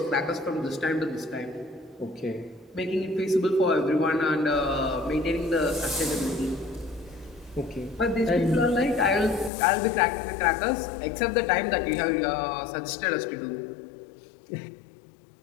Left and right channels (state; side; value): drops out; right; at 9.5 s